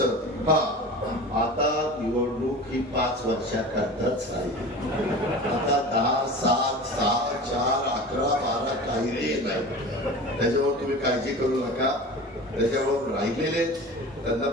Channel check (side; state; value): both; normal; correlation 0.35